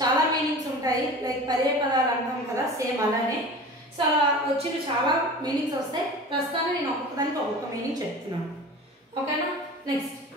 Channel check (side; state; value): both; normal; correlation 0.37